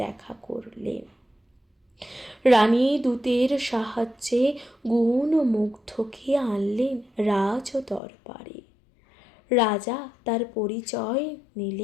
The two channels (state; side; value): drops out; right; at 8.0 s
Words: করলেন। রানী দূতের সাহায্যে গুণমুগ্ধকে আনলেন রাজ দরবারে। রাজা তার পরিচয়